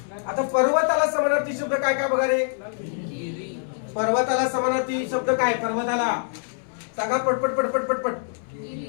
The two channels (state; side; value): silent; right; 61 dB below the other